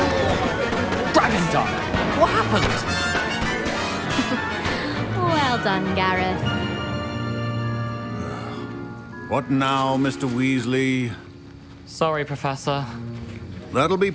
Dragon Dog! What happened? Well done, Gareth. What now, Mr. Weasley? Sorry, Professor. That'll be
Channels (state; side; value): identical; both; correlation 1.00